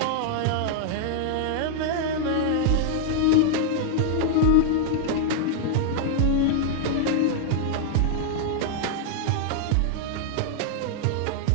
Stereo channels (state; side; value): different; both; correlation 0.00